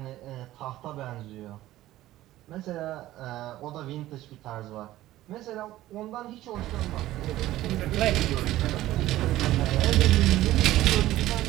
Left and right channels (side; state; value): left; quieter; 15.3 dB